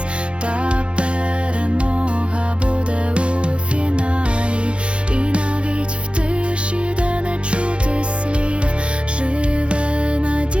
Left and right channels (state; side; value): late; left; 0.058 ms